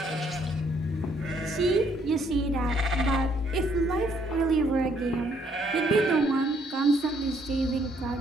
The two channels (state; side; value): normal; both; correlation 0.68